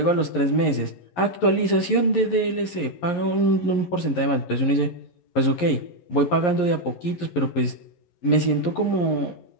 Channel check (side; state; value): right; late; 11 ms